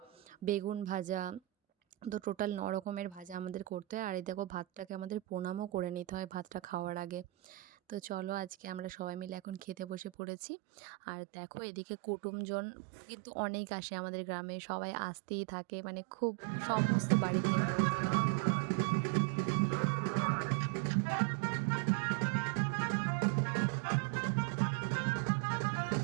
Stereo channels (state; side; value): drops out; left; at 10.1 s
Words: বেগুন ভাজা। তো টোটাল ৯ রকমের ভাজা আমাদের করতে হয়। আর এই দেখো ভাতটাকে আমাদের প্রণামও করে নিতে হয় ভাতটা খাওয়ার আগে। তো চলো আজকে আমরা সবাই মিলে এখন খেতে বসে পড়েছি। আর দেখো এদিকে কুটুমজন কিন্তু অনেক আসে আমাদের গ্রামে, সবাই আসতেই থাকে, মানে খুব সমস্ত বাড়িতে।